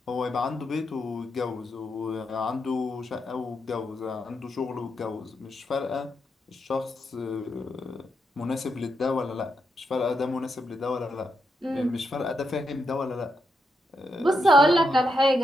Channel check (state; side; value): normal; both; correlation 0.82